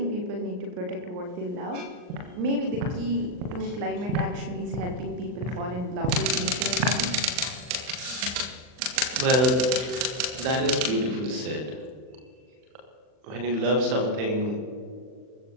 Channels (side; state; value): left; late; 39 ms